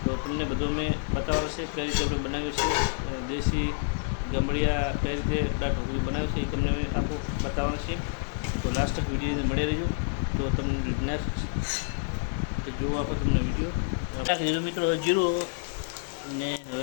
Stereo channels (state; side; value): silent; right; digital silence